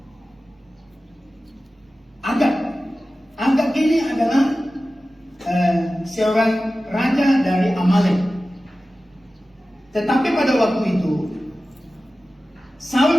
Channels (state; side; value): normal; both; correlation 0.95